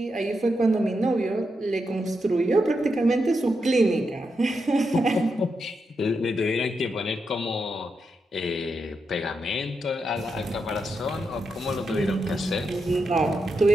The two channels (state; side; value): normal; both; correlation 0.85